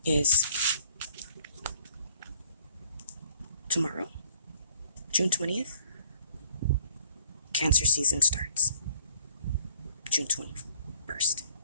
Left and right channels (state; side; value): inverted; both; correlation -0.58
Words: is tomorrow, June 20th. Cancer season starts June 21st.